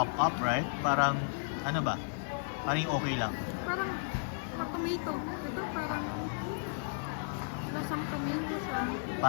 up, right? Parang, ano ba? Parang yung okay lang. Parang tomato. Ito parang lasang tomato siya.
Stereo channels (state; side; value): silent; right; digital silence